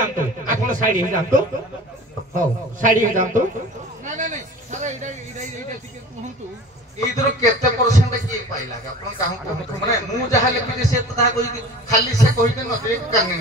ଆପଣ ସାଇଡ ହେଇଯାଆନ୍ତୁ ହଉ ସାଇଡ ହେଇଯାଆନ୍ତୁ ଏଇଥିରୁ କେତେ ପରସେଣ୍ଟ କିଏ ପାଇଲା ଆପଣ କାହାକୁ କୁହନ୍ତୁ ମାନେ ମୁଁ ଯାହା ଲେଖିଛି ସେ ତ ତାହା କହିକି ଖାଲି ସେ କହିକି ନଦୀ କାନି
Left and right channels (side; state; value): both; normal; correlation 0.40